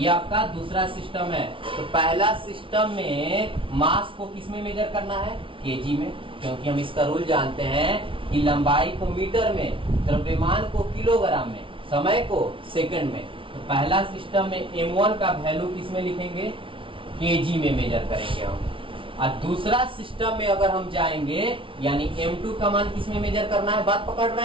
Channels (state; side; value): late; left; 0.25 ms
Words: आपका दूसरा सिस्टम है। तो पहला सिस्टम में मास को किस में मेजर करना है, केजी में, क्योंकि हम इसका रूल जानते हैं कि लंबाई को मीटर में, द्रव्यमान को किलोग्राम में, समय को सेकंड में। तो पहला सिस्टम में M1 का वैल्यू किस में लिखेंगे, केजी में मेजर करेंगे हम। और दूसरा सिस्टम में अगर हम जाएंगे, यानी M2 का मान किस में मेजर करना है, बात पकड़